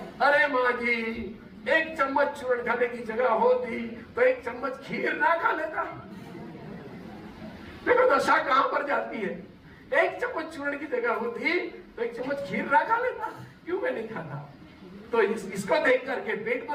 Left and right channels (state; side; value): identical; both; correlation 1.00